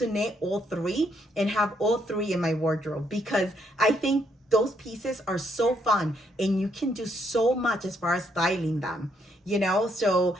knit all 3 and have all 3 in my wardrobe, because I think those pieces are so fun and you can do so much as far as styling them, you know? So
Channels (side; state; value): both; normal; correlation 0.73